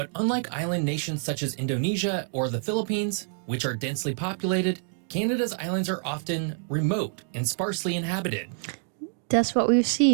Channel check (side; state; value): left; silent; digital silence